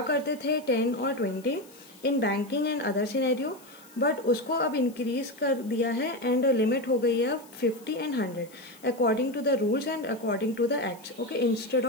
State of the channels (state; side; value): noise; left; hiss, 25 dB below the sound